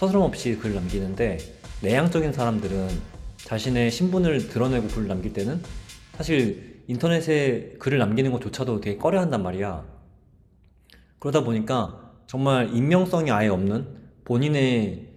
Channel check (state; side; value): identical; both; correlation 1.00